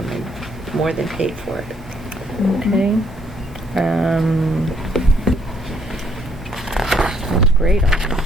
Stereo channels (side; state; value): both; normal; correlation 0.68